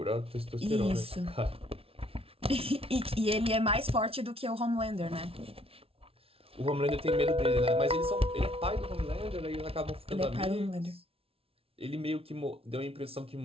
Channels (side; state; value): left; late; 0.27 ms